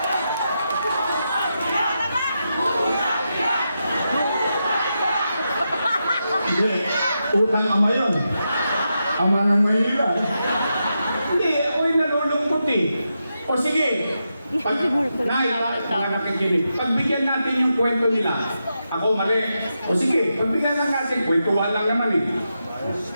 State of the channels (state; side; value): inverted; both; correlation -0.87